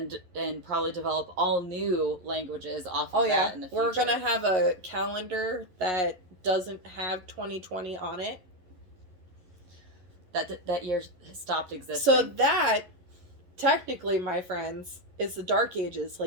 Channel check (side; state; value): left; late; 11 ms